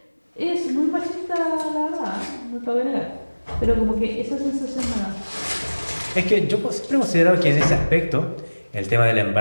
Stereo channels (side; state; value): both; inverted; correlation -1.00